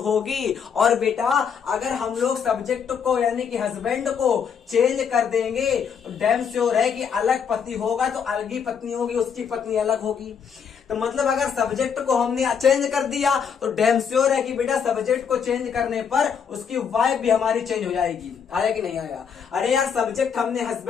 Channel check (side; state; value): right; quieter; 7.0 dB